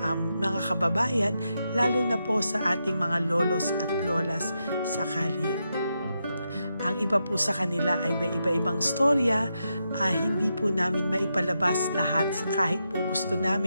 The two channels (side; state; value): both; inverted; correlation -0.85